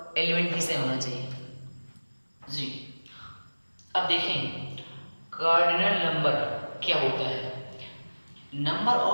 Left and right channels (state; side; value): inverted; both; correlation -1.00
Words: एलिमेंट भी सेम होना चाहिए जी। अब देखें कार्डिनल नंबर क्या होता है? Number